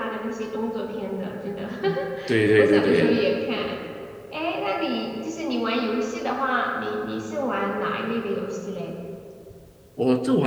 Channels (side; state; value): both; identical; correlation 1.00